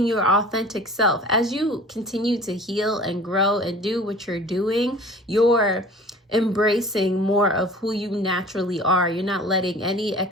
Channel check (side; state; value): both; normal; correlation 0.45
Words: your authentic self. As you continue to heal and grow and do what you're doing, you're embracing more of who you naturally are. You're not letting any